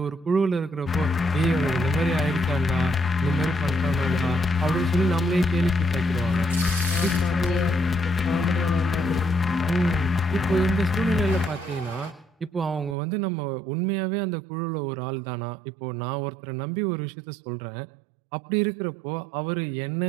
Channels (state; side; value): drops out; left; at 13.0 s